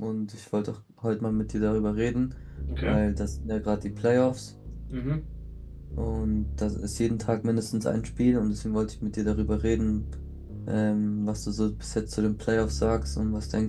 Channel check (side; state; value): both; identical; correlation 1.00